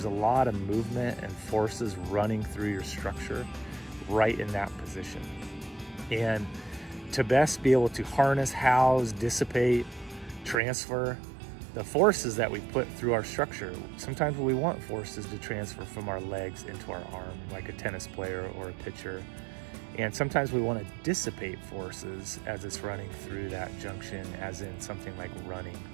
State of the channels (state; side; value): drops out; left; at 10.6 s